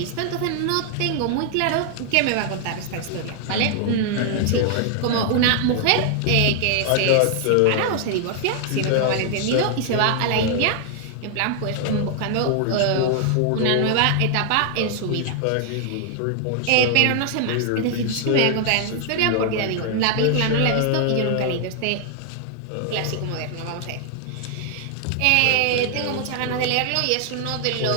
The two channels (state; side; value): different; both; correlation 0.00